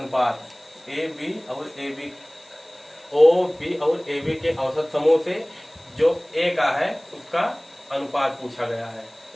ए बी और ए बी, ओ बी और ए बी के औसत समूह से जो ए का है उसका अनुपात पूछा गया है।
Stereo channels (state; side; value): noise; left; hiss, 30 dB below the sound